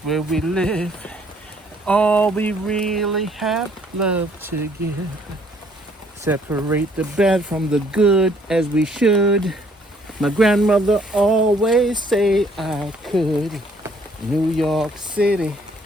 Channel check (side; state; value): both; normal; correlation 0.63